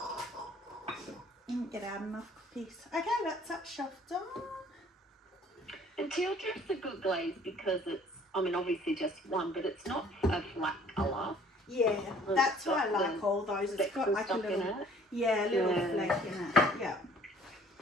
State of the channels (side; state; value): both; normal; correlation 0.55